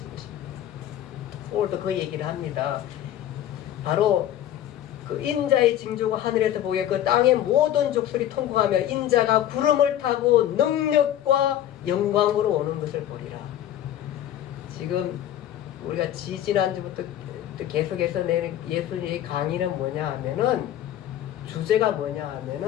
것입니다. 오늘도 그 얘기를 합니다. 바로 그 인자의 징조가 하늘에서 보게 그 땅의 모든 족속이 통곡하며 인자가 구름을 타고 능력과 영광으로 오는 것을 보리라. 지금 우리가 지지난주부터 계속해서 내는 예수님의 강의는 뭐냐 하면은 주제가 뭐냐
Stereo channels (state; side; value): quieter; right; 11.7 dB